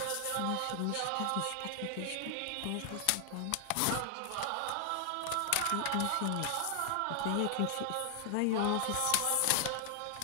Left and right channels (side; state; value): both; different; correlation 0.00